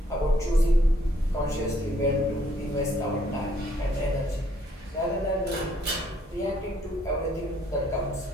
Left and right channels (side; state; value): both; normal; correlation 0.67